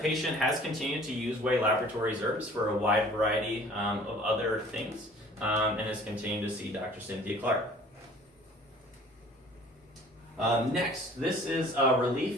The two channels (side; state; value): both; normal; correlation 0.50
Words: patient has continued to use Way Laboratories herbs for a wide variety of other things, and has continued to see Dr. Cynthia Clark. Next, this is